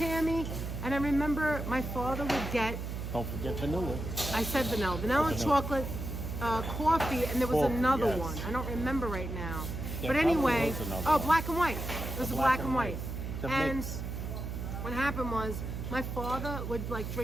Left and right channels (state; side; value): noise; right; hum, 5 dB below the sound